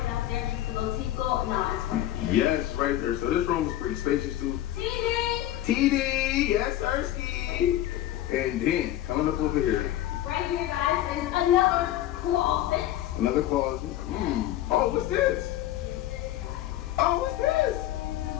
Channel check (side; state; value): right; quieter; 13.6 dB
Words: Yes, right there. So this room is pretty spacious too. TD, yes, Sirski. And then coming up over here. Right here, guys, is another closet. Another closet. Oh, what's this? Oh, what's this?